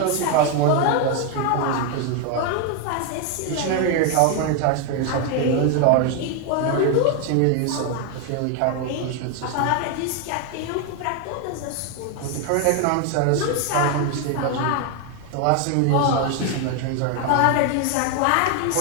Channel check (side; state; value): both; different; correlation 0.01